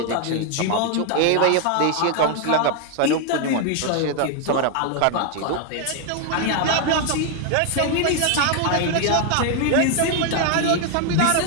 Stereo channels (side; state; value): both; different; correlation 0.00